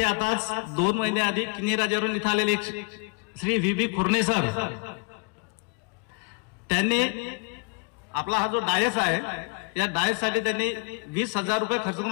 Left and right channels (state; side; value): quieter; right; 36.6 dB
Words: आताच 2 महिने आधी किनी राजावरून इथे आलेले श्री व्ही खुर्ने सर, त्यांनी आपला हा जो डायस आहे या डायस साठी त्यांनी 20,000 रुपये खर्च